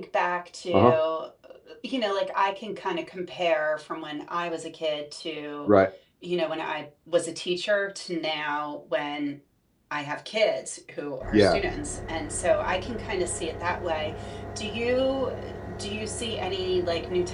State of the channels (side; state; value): both; identical; correlation 1.00